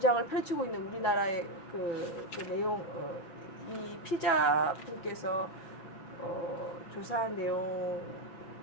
펼치고 있는 우리나라의 그 내용 이 피자 분께서 조사한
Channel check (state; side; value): late; right; 6.1 ms